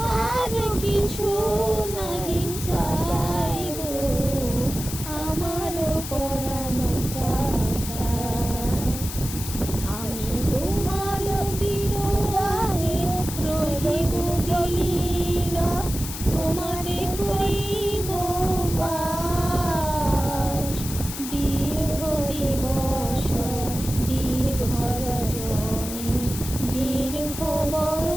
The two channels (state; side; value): noise; left; hiss, 8 dB below the sound